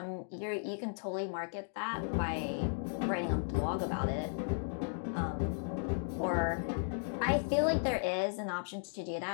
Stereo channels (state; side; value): silent; right; digital silence